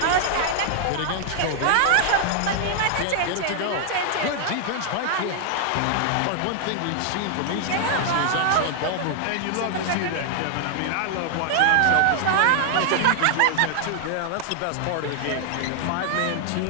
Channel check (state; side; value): different; both; correlation 0.00